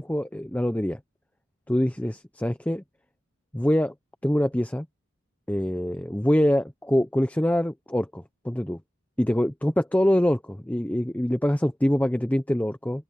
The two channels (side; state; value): both; normal; correlation 0.97